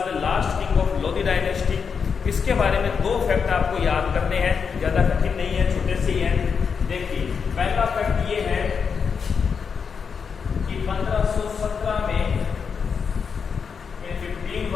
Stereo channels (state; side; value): quieter; right; 6.1 dB